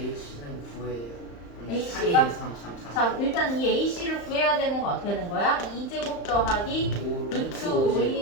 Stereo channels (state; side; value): late; right; 35 ms